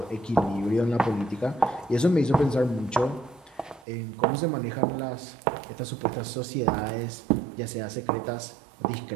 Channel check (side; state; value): left; drops out; at 3.9 s